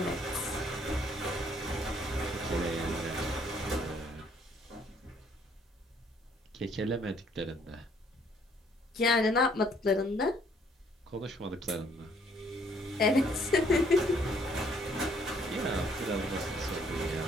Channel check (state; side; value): normal; both; correlation 0.64